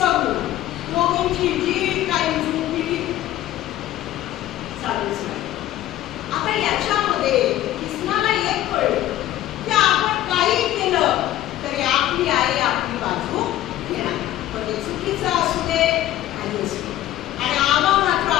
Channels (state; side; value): quieter; right; 13.8 dB